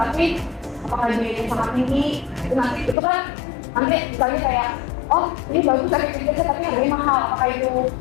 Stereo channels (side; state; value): right; drops out; at 3.0 s